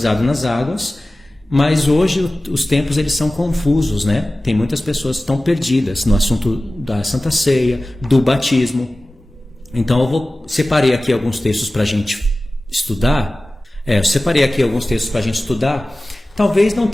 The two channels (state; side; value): normal; both; correlation 0.97